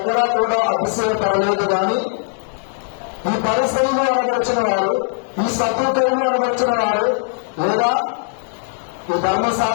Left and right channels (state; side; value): silent; right; 61 dB below the other